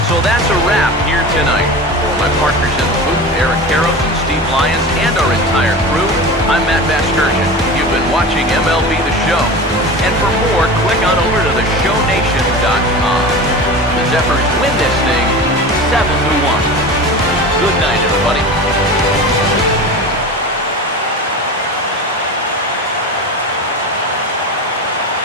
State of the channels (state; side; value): normal; both; correlation 0.31